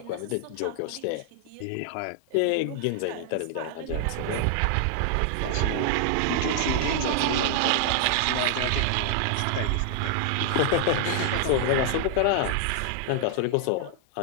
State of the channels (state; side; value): different; both; correlation -0.01